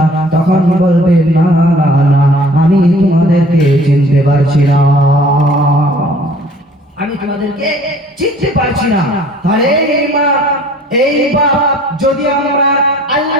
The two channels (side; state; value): both; normal; correlation 0.52